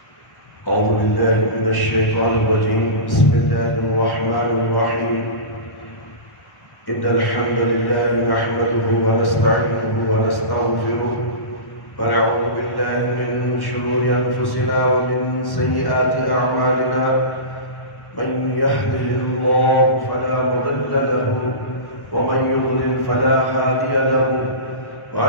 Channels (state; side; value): late; right; 1.1 ms